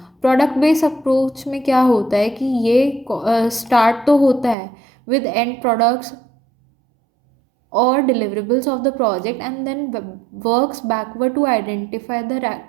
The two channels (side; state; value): left; drops out; at 4.5 s